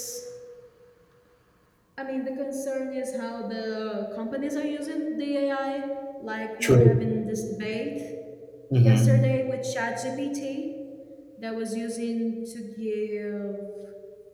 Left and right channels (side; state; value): both; identical; correlation 1.00